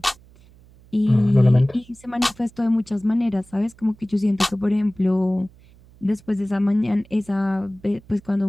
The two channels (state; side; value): noise; right; hum, 26 dB below the sound